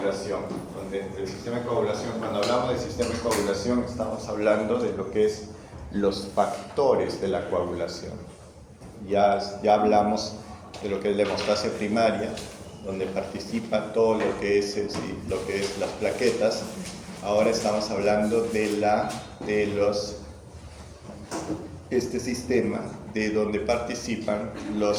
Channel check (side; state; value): both; identical; correlation 1.00